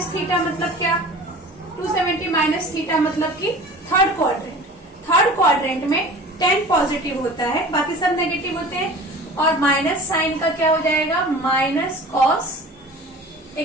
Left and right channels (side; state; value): both; normal; correlation 0.41